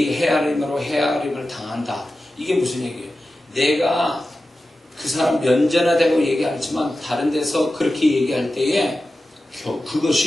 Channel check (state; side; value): normal; both; correlation 0.93